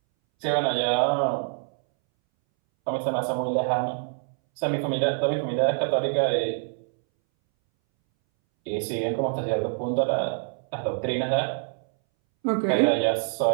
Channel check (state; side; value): silent; left; 61 dB below the other